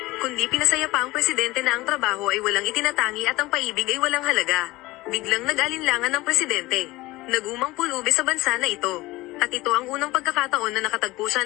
kundi pinasaya pa ang presidente na ang trabaho ay walang itinatangi at ang paibig ay walang halaga. Biglang nag-alinlangan ng presidente. Nagumang pulubi sa bansa na ito. At ito ang unang pagkakataon na nakatagpo siya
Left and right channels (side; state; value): right; quieter; 19.7 dB